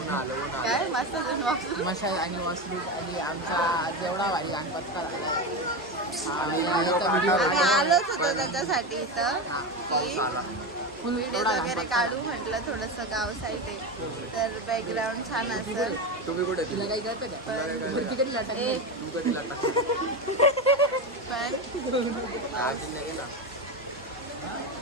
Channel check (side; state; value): both; normal; correlation 0.18